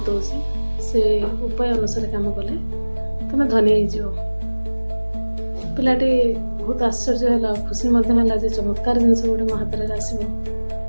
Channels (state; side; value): inverted; both; correlation -1.00